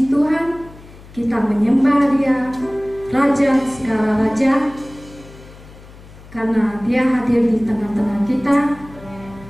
Tuhan, kita menyembah Dia, Raja segala raja, karena Dia hadir di tengah-tengah kita.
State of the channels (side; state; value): left; noise; hum, 20 dB below the sound